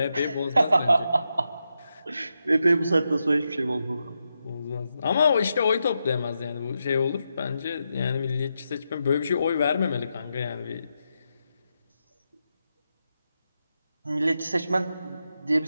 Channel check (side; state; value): both; inverted; correlation -0.86